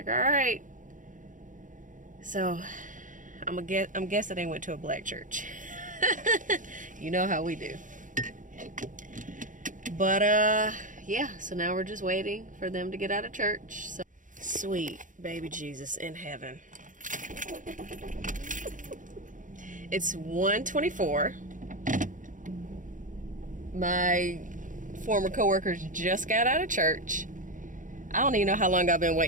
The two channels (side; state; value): left; late; 0.38 ms